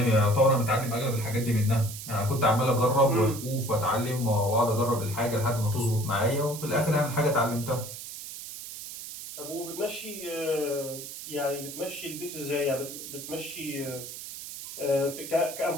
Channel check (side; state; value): right; noise; hiss, 10 dB below the sound